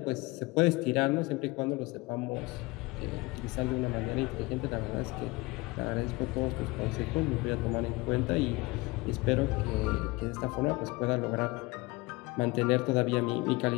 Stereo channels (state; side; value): quieter; right; 23.4 dB